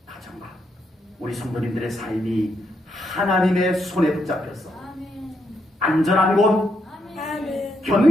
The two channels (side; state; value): both; normal; correlation 0.79